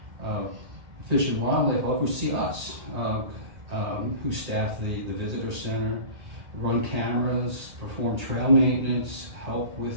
Fish and Wildlife oversee us, who staff the visitor center, run cameras, perform trail maintenance, help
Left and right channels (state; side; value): late; left; 1.8 ms